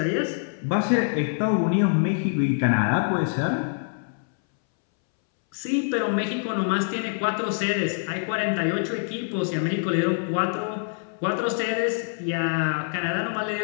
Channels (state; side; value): silent; right; 62 dB below the other